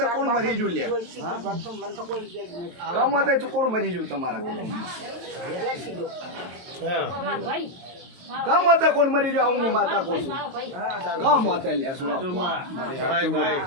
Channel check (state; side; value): late; left; 22 ms